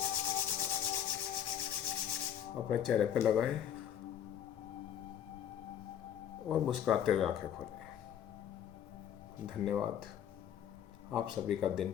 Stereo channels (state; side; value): quieter; right; 9.4 dB